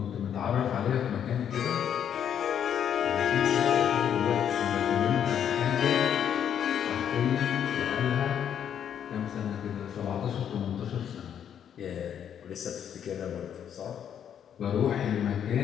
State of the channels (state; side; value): quieter; right; 9.0 dB